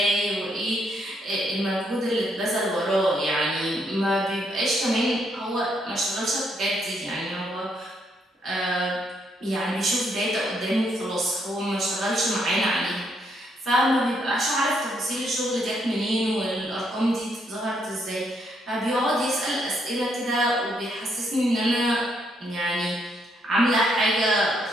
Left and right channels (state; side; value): normal; both; correlation 0.74